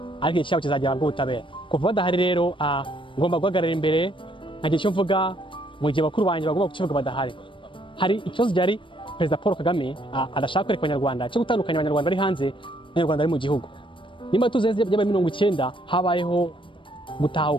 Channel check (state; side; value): late; right; 0.25 ms